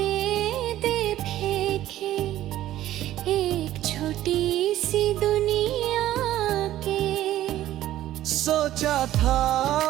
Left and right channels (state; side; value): quieter; left; 13.7 dB